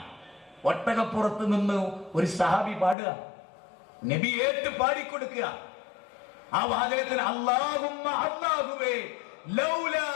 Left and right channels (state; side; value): drops out; right; at 3.0 s